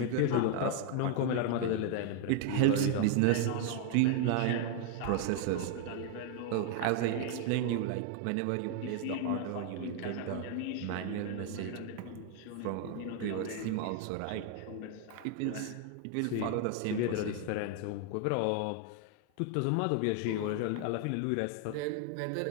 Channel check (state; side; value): different; both; correlation 0.00